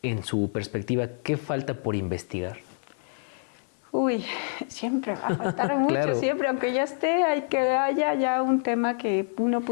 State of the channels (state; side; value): silent; right; 59 dB below the other